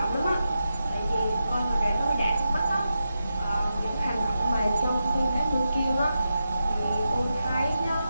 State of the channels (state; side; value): inverted; both; correlation -0.89